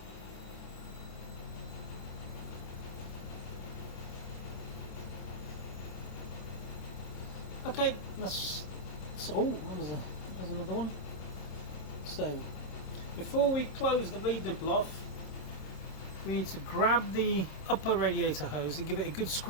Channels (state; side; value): late; right; 27 ms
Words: Okay, that's oh, that was another one. So before we close the bleed nipple off, we need to grab the upper radiator hose and give it a good